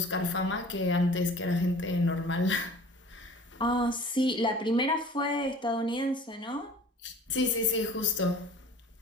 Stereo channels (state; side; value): normal; both; correlation 0.46